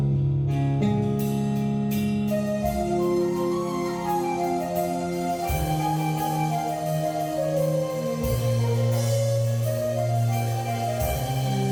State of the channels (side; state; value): both; identical; correlation 1.00